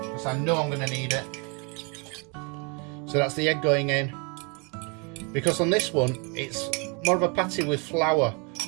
I know I'm going to need it. So that's the egg going in. Because on this one, it's more of a patty with flour,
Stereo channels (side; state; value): left; quieter; 32.8 dB